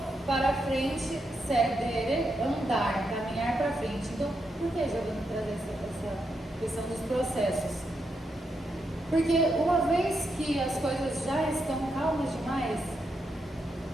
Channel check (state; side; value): normal; both; correlation 0.83